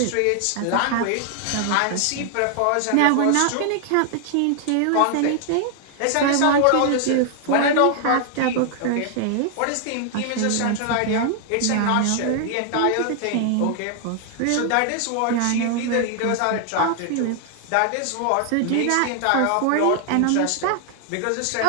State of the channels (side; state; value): both; different; correlation 0.00